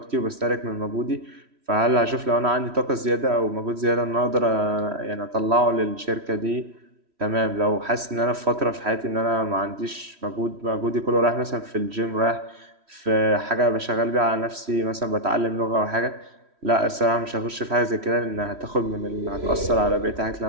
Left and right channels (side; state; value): left; late; 3.1 ms